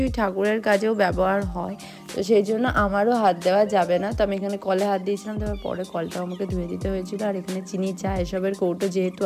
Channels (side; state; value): both; identical; correlation 1.00